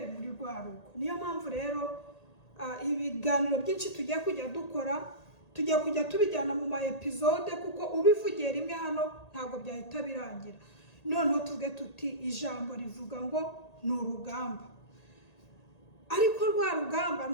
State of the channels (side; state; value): right; late; 1.8 ms